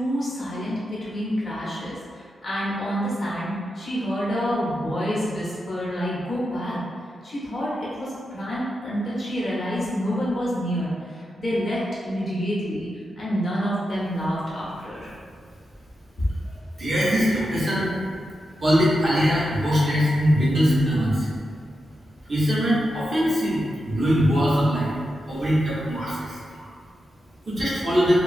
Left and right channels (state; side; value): normal; both; correlation 0.88